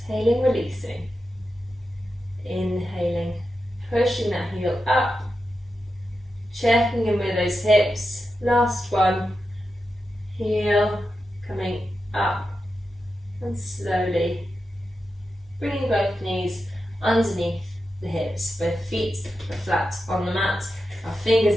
releasing. Inhaling, pushing that heel up. Checking in with those hips. Last one. Heel coming up. And slowly bringing both knees underneath the hips. Both feet are flat on the mat. Our fingers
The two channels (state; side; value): normal; both; correlation 0.89